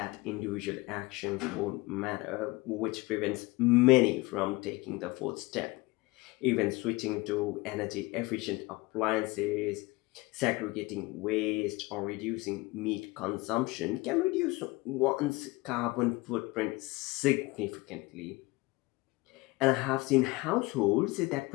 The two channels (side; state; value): right; quieter; 22.6 dB